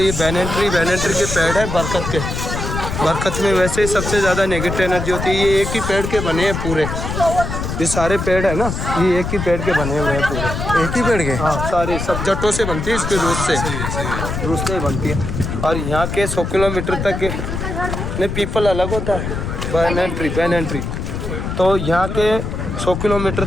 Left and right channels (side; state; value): left; noise; rumble, 4 dB below the sound